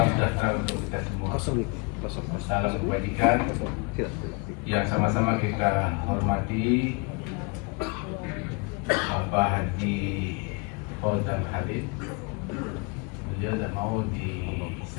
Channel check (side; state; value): right; quieter; 31.7 dB